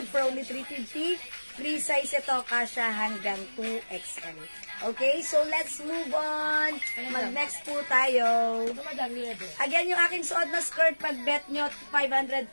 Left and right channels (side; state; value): both; inverted; correlation -1.00